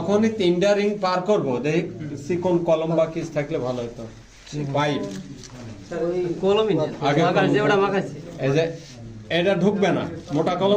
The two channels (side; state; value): both; identical; correlation 1.00